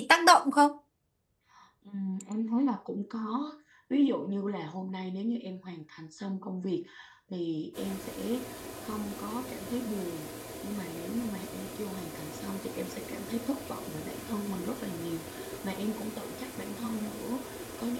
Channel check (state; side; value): identical; both; correlation 1.00